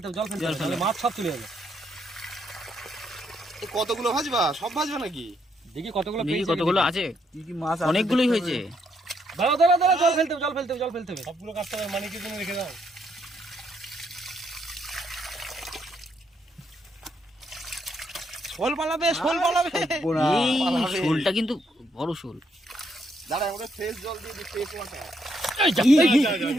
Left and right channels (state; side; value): normal; both; correlation 0.75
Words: মাছ সব চলে যাবে। কতগুলো ভাজবা? সব ভাজবা নাকি? দেখি কতগুলো আছে, কি কি মাছ? অনেকগুলোই হয়েছে। দাঁড়া জল ফেলতে হবে সবগুলো কাটতে হবে। মানে কি তুমি রেখে দাও। শোল পালাবে। এই শোলটা কিন্তু বড় শোল। দাঁড়া, আমরা ফ্রেশ জল দিয়ে দিই, ফ্রেশ ওয়াটার।